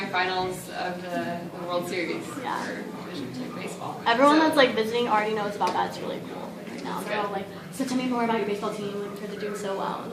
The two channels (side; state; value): both; identical; correlation 1.00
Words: of the World Series for Division II baseball. Everyone that's like visiting already knows about that. It's really cool right now. They're all like, so tell me more about your baseball team because they're doing so well. And